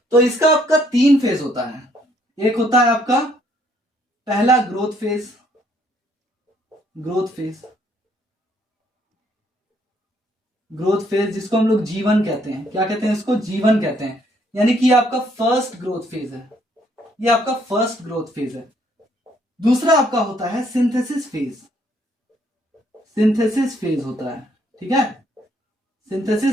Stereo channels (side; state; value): both; normal; correlation 0.67